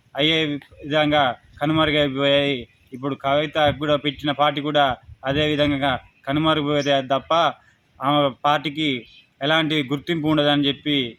అయ్యే విధంగా కనుమరుగైపోయాయి. ఇప్పుడు కవిత కూడా పెట్టిన పార్టీ కూడా అదే విధంగా కనుమరుగైపోతే తప్ప ఆమె పార్టీకి ఎలాంటి గుర్తింపు ఉండదని చెప్పి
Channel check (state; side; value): identical; both; correlation 1.00